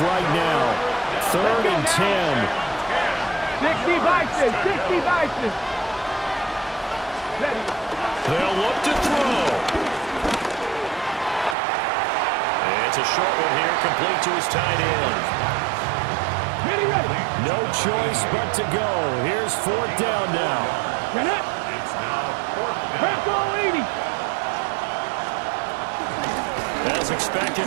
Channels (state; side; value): drops out; left; at 11.6 s